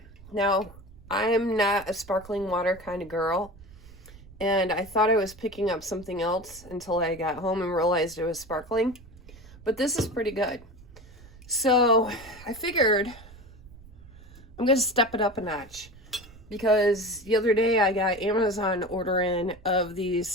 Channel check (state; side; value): noise; right; rumble, 20 dB below the sound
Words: Now, I'm not a sparkling water kind of girl. And I thought I was picking up something else until I got home and realized it was sparkling. But this is pretty good. So I figured I'm going to step it up a notch. Because the other day I got Amazon order in of